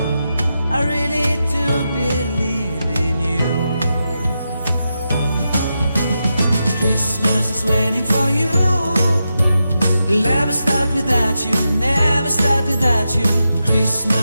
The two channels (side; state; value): both; inverted; correlation -0.88